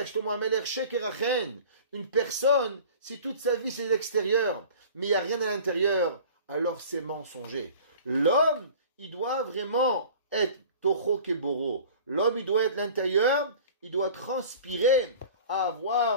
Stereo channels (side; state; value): both; inverted; correlation -0.43